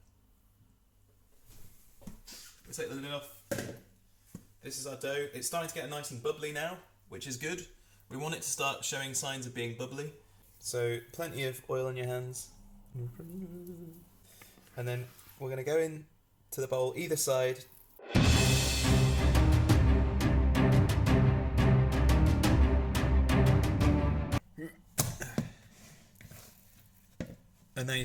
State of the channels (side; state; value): both; identical; correlation 1.00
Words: We take the lid off. This is our dough. It's starting to get nice and bubbly now, which is good. We want it to start showing signs of being bubbly. So plenty of oil on your hands. And then we're going to go in to the bowl either side. And then